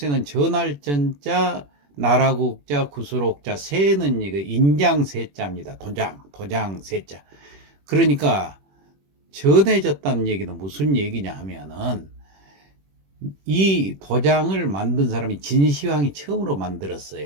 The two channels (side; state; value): left; late; 21 ms